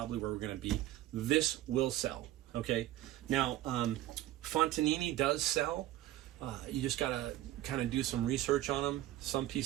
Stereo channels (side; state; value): left; quieter; 14.7 dB